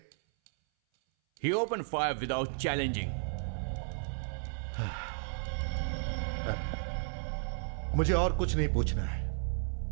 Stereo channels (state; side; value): silent; left; 55 dB below the other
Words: He opened fire without challenging. मुझे और कुछ नहीं पूछना है।